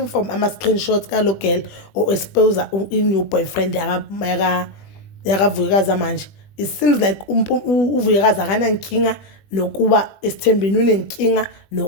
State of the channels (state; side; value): late; right; 20 ms